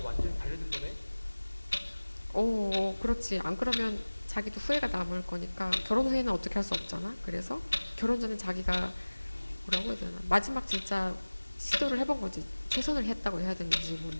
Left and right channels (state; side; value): inverted; both; correlation -1.00